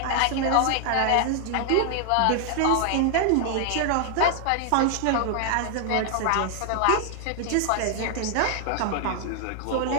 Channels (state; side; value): different; both; correlation 0.00